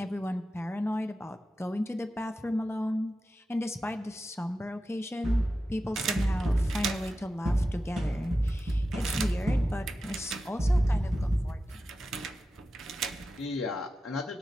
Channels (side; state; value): both; normal; correlation 0.92